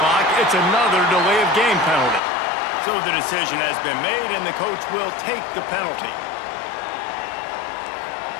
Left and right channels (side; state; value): right; drops out; at 2.2 s